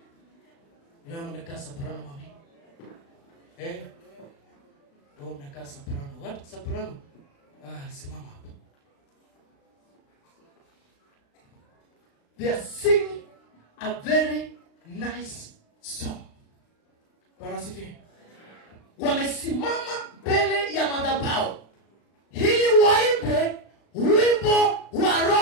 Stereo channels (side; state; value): right; late; 36 ms